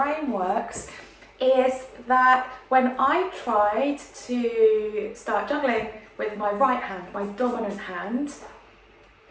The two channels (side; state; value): both; identical; correlation 1.00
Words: works is that when I tried to start juggling with my right hand, my dominant hand,